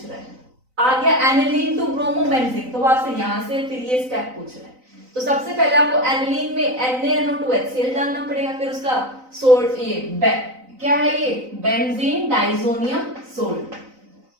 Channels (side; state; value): left; late; 3.9 ms